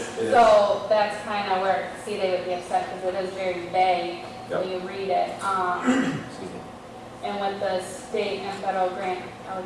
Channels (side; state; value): both; identical; correlation 1.00